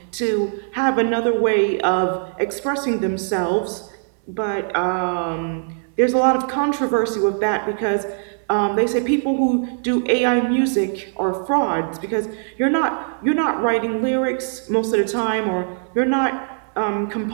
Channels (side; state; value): left; silent; 65 dB below the other